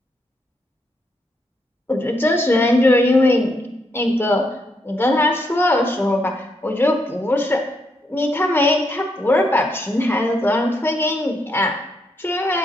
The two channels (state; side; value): normal; both; correlation 0.77